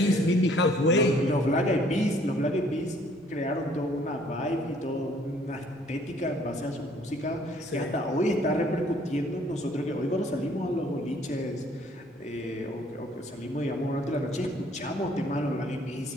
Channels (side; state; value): both; normal; correlation 0.60